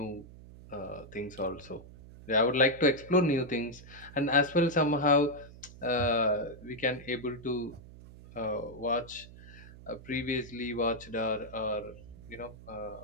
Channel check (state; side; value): noise; right; hum, 18 dB below the sound